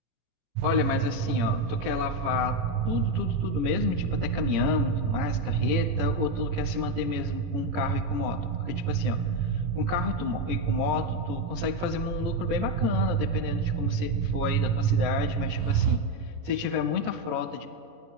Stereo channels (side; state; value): left; late; 18 ms